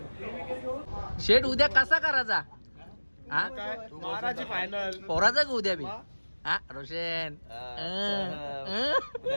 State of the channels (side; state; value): both; inverted; correlation -1.00